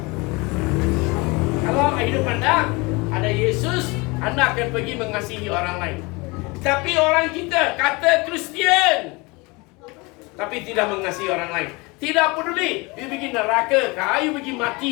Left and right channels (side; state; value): right; quieter; 26.0 dB